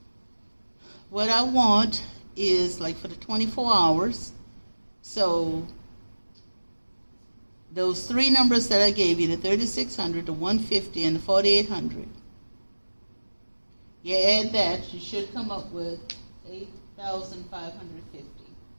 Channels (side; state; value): both; inverted; correlation -1.00